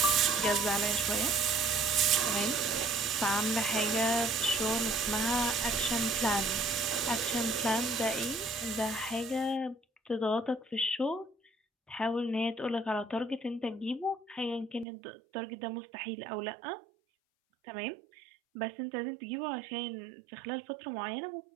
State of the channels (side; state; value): left; drops out; at 14.9 s